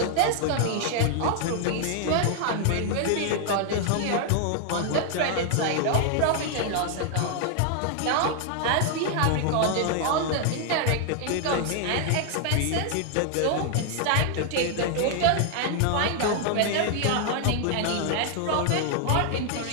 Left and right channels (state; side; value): different; both; correlation 0.00